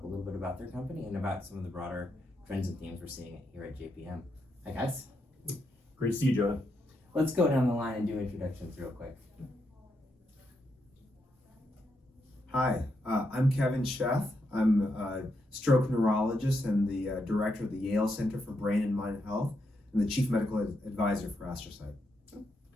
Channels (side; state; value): both; normal; correlation 0.81